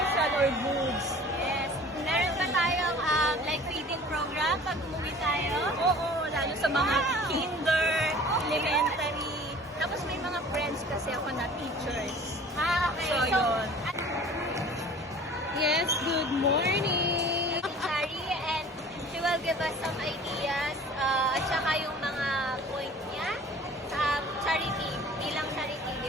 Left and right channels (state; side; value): normal; both; correlation 0.46